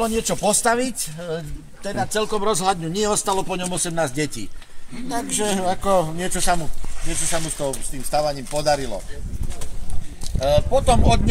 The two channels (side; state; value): both; identical; correlation 1.00